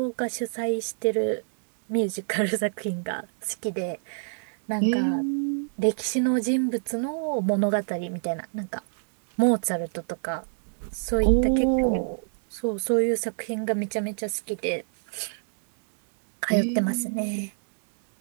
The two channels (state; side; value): silent; left; 61 dB below the other